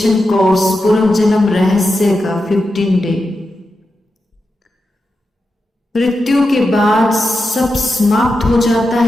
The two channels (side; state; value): both; normal; correlation 0.89